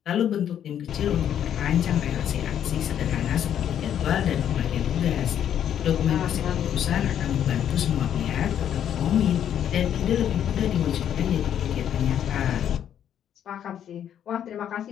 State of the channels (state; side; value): quieter; right; 9.8 dB